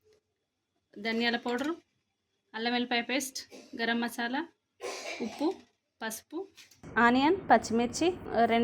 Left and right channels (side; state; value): both; identical; correlation 1.00